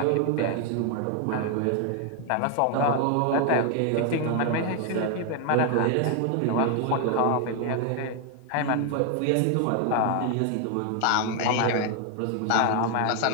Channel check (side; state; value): both; different; correlation 0.00